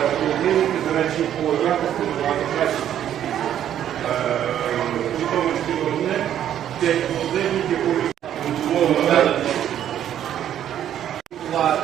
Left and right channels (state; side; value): quieter; left; 10.6 dB